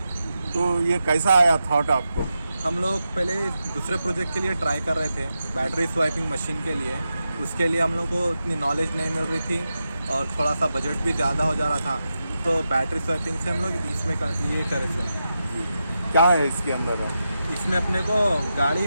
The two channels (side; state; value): both; inverted; correlation -0.89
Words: तो ये कैसा आया थॉट आपको? हम लोग पहले दूसरे प्रोजेक्ट के लिए ट्राई कर रहे थे, बैटरी स्वाइपिंग मशीन के लिए। उसके लिए हम लोग को इतनी नॉलेज नहीं मिल रही थी और थोड़ा सा बजट भी ज़्यादा हो जा रहा था, तो बैटरी स्वाइपिंग से हम लोग इसमें ये करे थे। क्या है इसके अंदर? इसमें अपने को गाड़ी